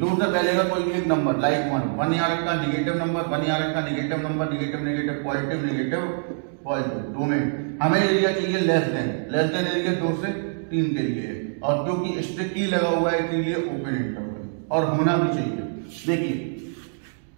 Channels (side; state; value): left; silent; digital silence